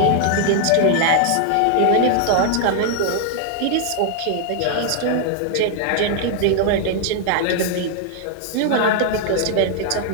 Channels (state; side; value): different; both; correlation 0.00